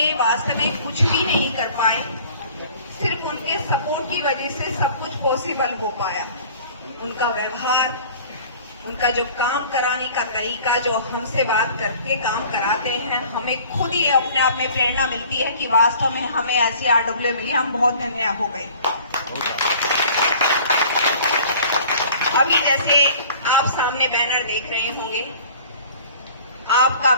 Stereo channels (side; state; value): both; inverted; correlation -0.48